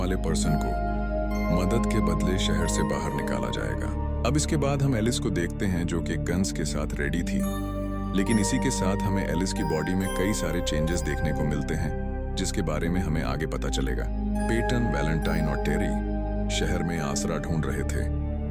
पर्सन को मदद के बदले शहर से बाहर निकाला जाएगा। अब इसके बाद हम एलिस को देखते हैं, जो कि गन्स के साथ रेडी थी, लेकिन इसी के साथ हमें एलिस की बॉडी में कई सारे चेंजेस देखने को मिलते हैं, जिसके बारे में हमें आगे पता चलेगा। पेटन, वैलेंटाइन और टेरी शहर में आसरा ढूंढ रहे थे,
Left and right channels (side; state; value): both; identical; correlation 1.00